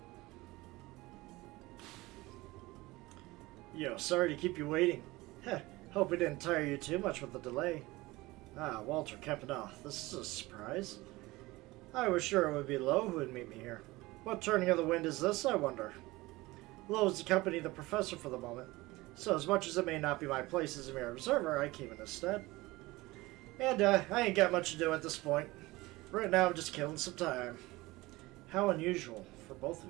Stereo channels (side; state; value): left; quieter; 20.4 dB